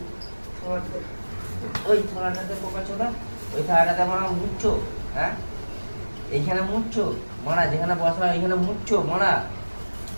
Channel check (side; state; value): both; inverted; correlation -1.00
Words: থালাটাতে, ওই থালাটাতে বোকাচ্ছো না, ওই থালাটাতে মারা মুচ্ছো। হ্যাঁ এইখানে মুচ্ছো মারা, যেখানে বসা এইখানে মুচ্ছো মারা।